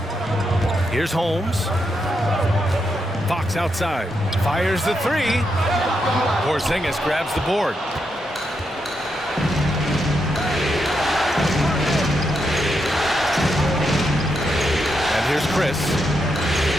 Here's Holmes. Fox outside. Fires the 3. Porzingis grabs the board. And here's Chris.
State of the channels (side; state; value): both; normal; correlation 0.82